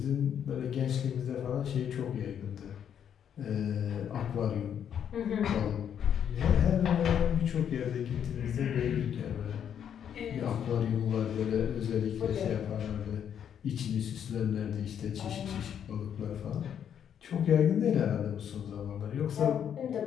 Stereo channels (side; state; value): right; quieter; 8.8 dB